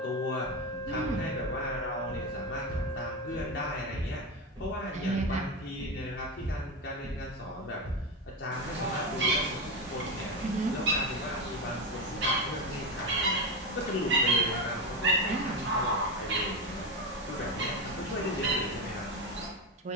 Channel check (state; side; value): normal; both; correlation 0.15